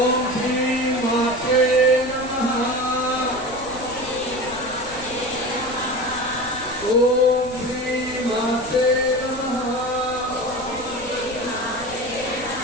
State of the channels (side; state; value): left; noise; rumble, 18 dB below the sound